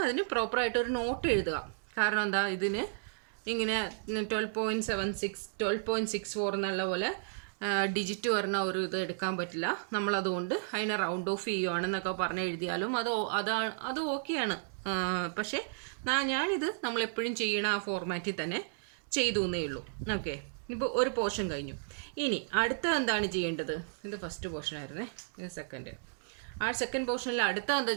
അതിന് പ്രോപ്പറായിട്ടൊരു നോട്ട് എഴുതുക. കാരണം എന്താ, ഇതിന് ഇങ്ങനെ 12.76 12.64 എന്നുള്ള പോലെ ഡിജിറ്റ് വരുന്ന ഒരു ഇത് എടുക്കാൻ പറ്റില്ല. നമ്മളതുകൊണ്ട് അതിനെ റൗണ്ട് ഓഫ് ചെയ്യുകയാണെന്നൊക്കെ പറഞ്ഞ് എഴുതിയാലും അത് ഓക്കെയാണ്. പക്ഷേ ഞാനിത് നമ്മളെപ്പോഴും ചെയ്യണ ആ ഫോർമാറ്റിൽ തന്നെ ചെയ്തു എന്നേ ഉള്ളൂ. ഓക്കെ, ഇപ്പോൾ ഒരു പോർഷൻ കഴിഞ്ഞു. ഇനി അടുത്ത എന്താണ് ചെയ്യേണ്ടത്? ഇത് ഫസ്റ്റ് പോർഷൻ ആയിരുന്നേ, ഇത് സെക്കൻഡ്. ആ സെക്കൻഡ് പോർഷനിൽ അടുത്ത എന്താ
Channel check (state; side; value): silent; left; digital silence